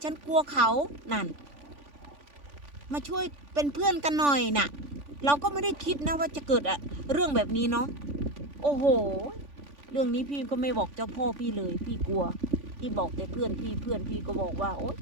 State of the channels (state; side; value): late; left; 3.5 ms